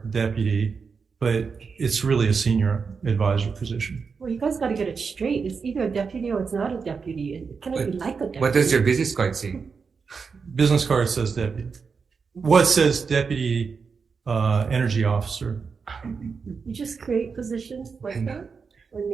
deputy, but it's really a senior advisor position. Well, you guys got to get it straight. It's either a deputy or it's not a deputy. It cannot be like a deputy. What does your business card say? Business card says deputy. What says deputy energy officer? You just create positions like that? or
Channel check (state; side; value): quieter; left; 5.4 dB